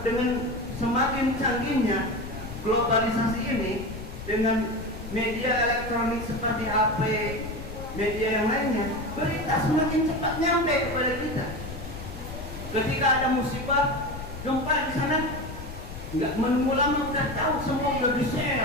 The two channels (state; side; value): noise; left; rumble, 11 dB below the sound